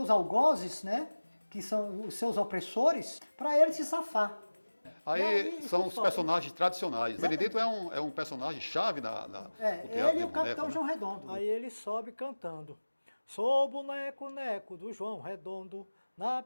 algozes, né, que são os seus opressores, para ele se safar. Aí são os personagens tradicionais. O Benedito é um personagem chave do teatro ele de e o Capitão boneco, João Redondo. Aí ele sobe cantando. Sou boneco, neco do João Redondo, na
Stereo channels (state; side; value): inverted; both; correlation -1.00